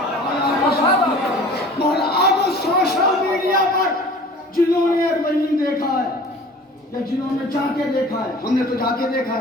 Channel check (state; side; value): normal; both; correlation 0.45